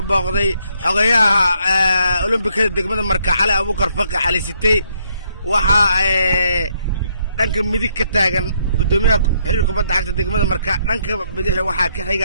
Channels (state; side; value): inverted; both; correlation -0.72